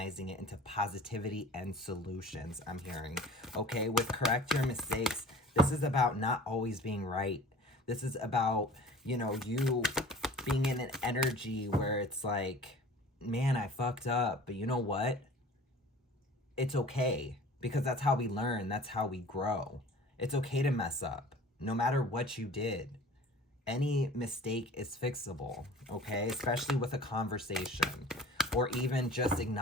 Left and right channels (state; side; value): normal; both; correlation 0.44